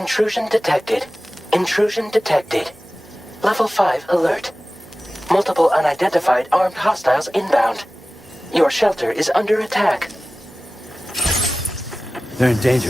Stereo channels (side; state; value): both; normal; correlation 0.97